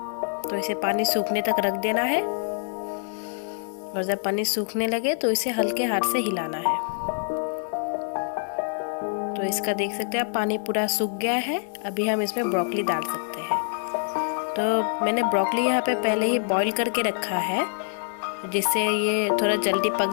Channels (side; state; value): right; silent; digital silence